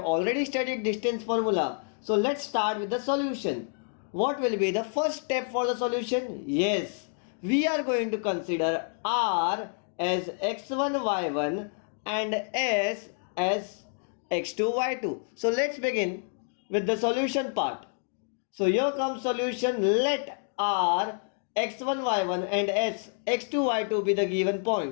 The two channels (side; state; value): right; silent; 59 dB below the other